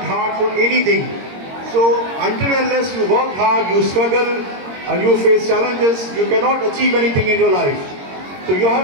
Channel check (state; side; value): late; left; 22 ms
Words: hard for anything. So until and unless you work hard, you struggle and you face challenges, you cannot achieve anything in your life. So you